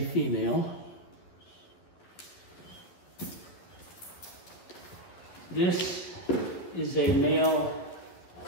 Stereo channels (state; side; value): late; right; 11 ms